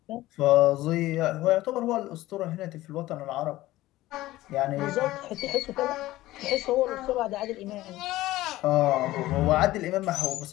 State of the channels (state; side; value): quieter; right; 16.7 dB